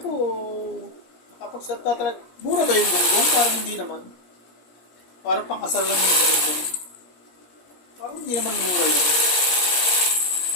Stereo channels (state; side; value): late; right; 17 ms